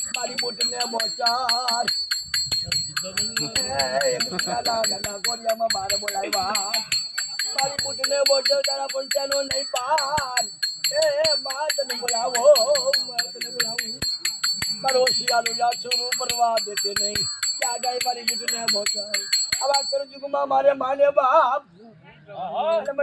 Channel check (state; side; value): identical; both; correlation 1.00